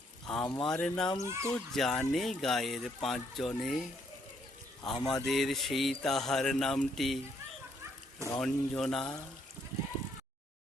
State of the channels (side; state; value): both; normal; correlation 0.71